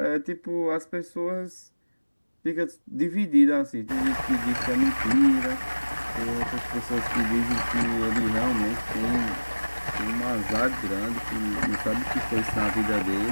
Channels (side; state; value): both; inverted; correlation -1.00